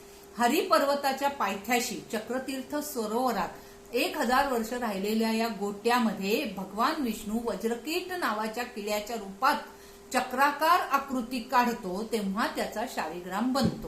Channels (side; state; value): both; identical; correlation 1.00